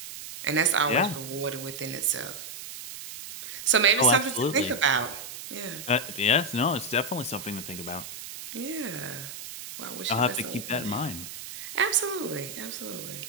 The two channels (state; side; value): noise; right; hiss, 11 dB below the sound